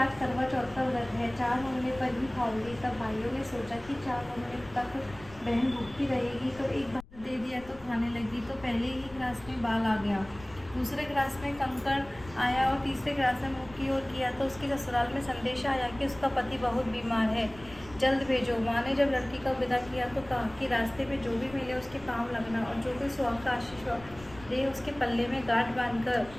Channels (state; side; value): noise; left; rumble, 19 dB below the sound